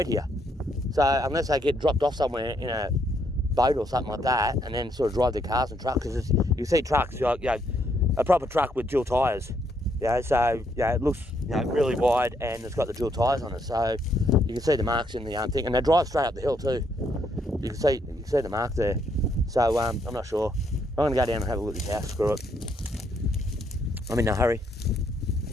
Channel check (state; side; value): normal; both; correlation 0.73